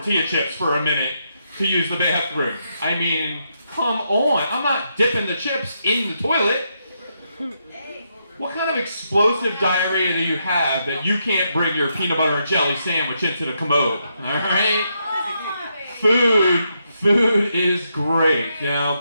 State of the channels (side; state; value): both; inverted; correlation -0.80